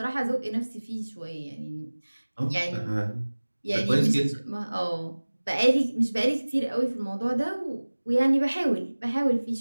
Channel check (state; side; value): inverted; both; correlation -1.00